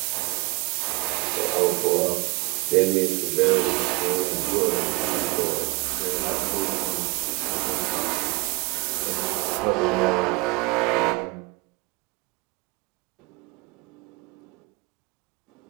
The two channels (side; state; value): left; quieter; 25.3 dB